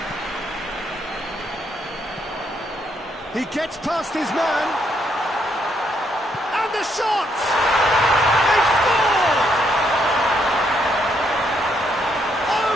He gets past his man. And the shot! They scored!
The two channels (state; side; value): normal; both; correlation 0.74